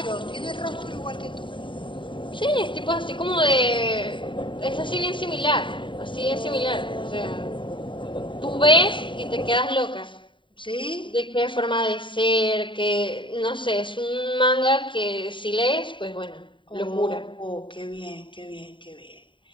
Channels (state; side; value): late; right; 0.24 ms